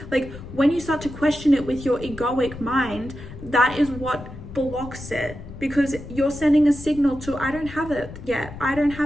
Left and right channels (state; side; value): noise; left; rumble, 13 dB below the sound